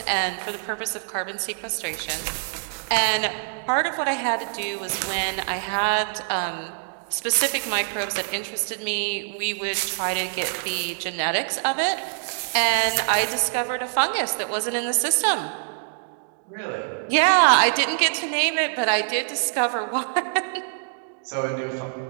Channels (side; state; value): left; silent; digital silence